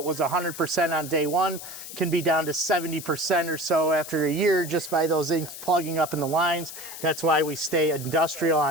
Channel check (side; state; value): left; noise; hiss, 11 dB below the sound